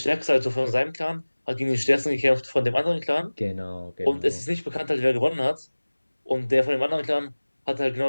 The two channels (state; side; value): inverted; both; correlation -1.00